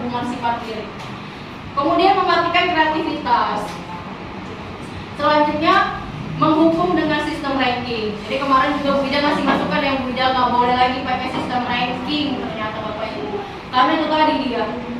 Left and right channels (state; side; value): identical; both; correlation 1.00